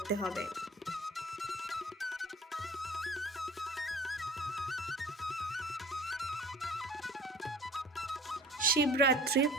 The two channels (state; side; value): normal; both; correlation 0.45